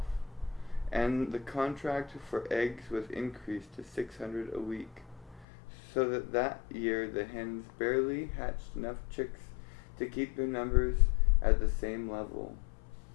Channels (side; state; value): right; drops out; at 5.5 s